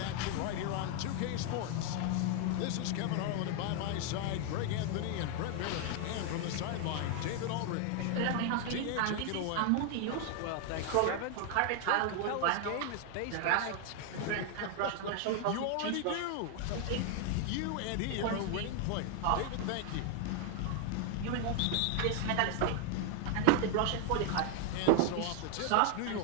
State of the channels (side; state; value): both; different; correlation 0.00